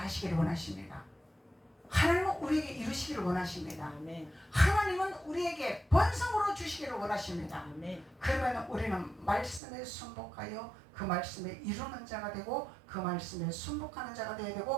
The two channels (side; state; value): left; drops out; at 9.6 s